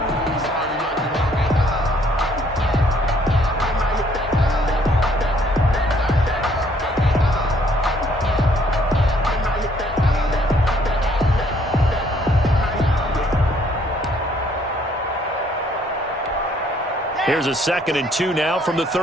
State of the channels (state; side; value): normal; both; correlation 0.64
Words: Here's a 2nd and 2 now from the